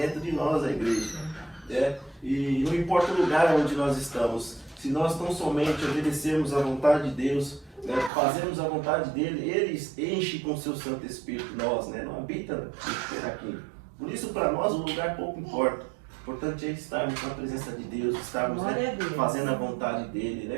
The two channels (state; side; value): drops out; left; at 8.1 s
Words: de nós a igreja, né? E não importa o lugar onde nós estamos, se nós tão somente obedecemos à vontade de Deus, né? Fazemos a vontade dele, ele enche com o seu Santo Espírito nós, né? Não habita aqui. Por isso, para nós, o lugar pouco importa. O importante é estarmos na presença de Deus, estarmos, né, fazendo a vontade dele,